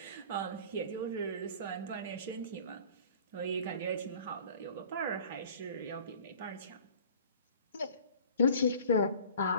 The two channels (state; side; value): inverted; both; correlation -0.47